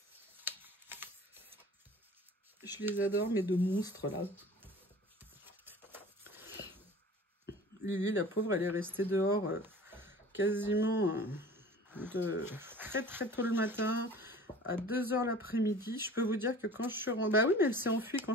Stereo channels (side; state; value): both; normal; correlation 0.43